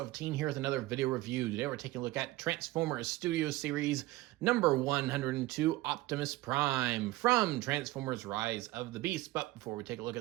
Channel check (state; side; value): quieter; left; 18.3 dB